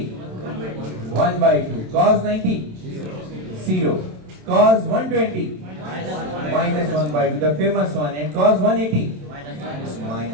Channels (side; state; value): left; late; 27 ms